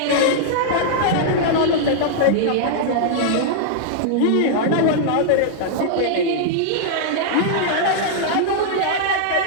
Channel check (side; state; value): both; different; correlation -0.02